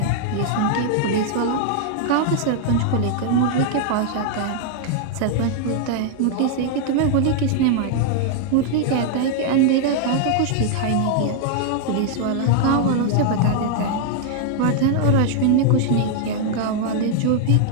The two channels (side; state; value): both; different; correlation 0.00